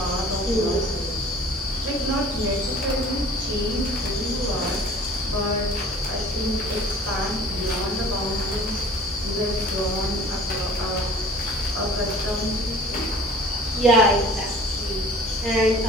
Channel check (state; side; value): normal; both; correlation 0.47